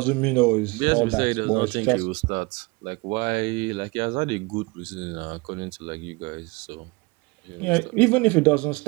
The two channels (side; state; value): left; quieter; 25.8 dB